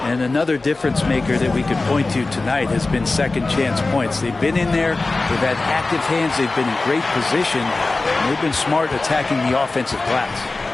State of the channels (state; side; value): quieter; right; 3.4 dB